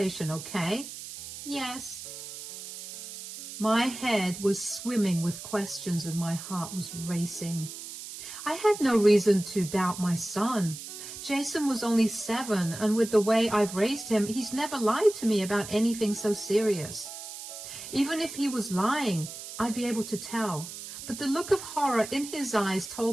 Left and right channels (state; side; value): noise; right; hiss, 11 dB below the sound